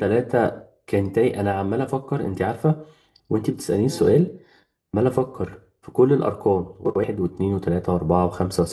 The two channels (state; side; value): identical; both; correlation 1.00